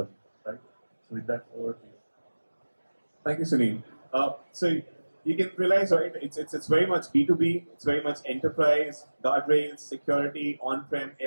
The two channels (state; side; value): inverted; both; correlation -1.00